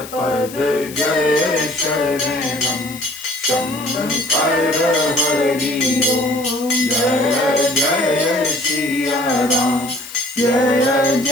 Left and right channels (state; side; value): noise; left; hiss, 15 dB below the sound